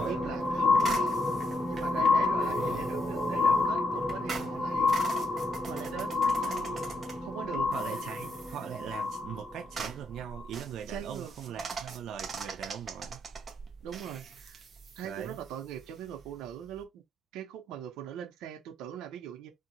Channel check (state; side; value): normal; both; correlation 0.78